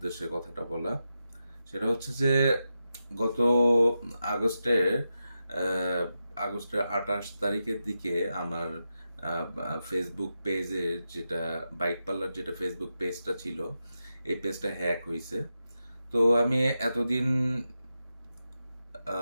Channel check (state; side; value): inverted; both; correlation -0.89